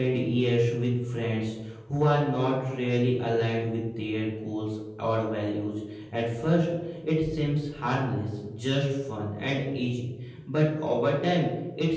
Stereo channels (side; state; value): both; identical; correlation 1.00